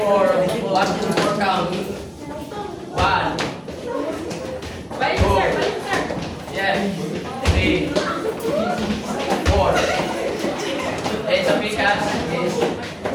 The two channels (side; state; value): both; identical; correlation 1.00